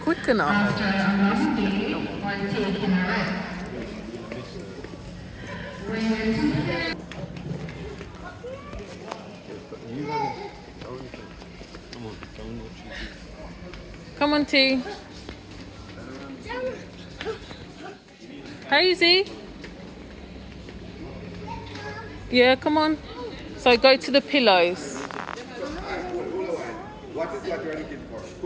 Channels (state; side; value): identical; both; correlation 1.00